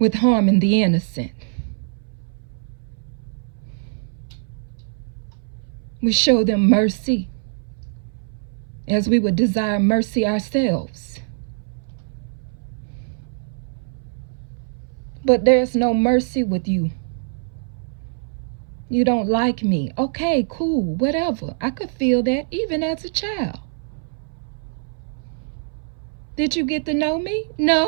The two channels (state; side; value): silent; left; 61 dB below the other